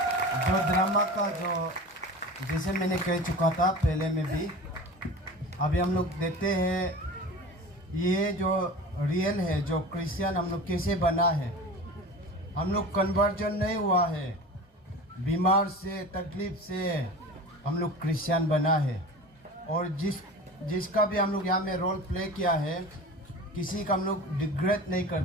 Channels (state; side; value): normal; both; correlation 0.34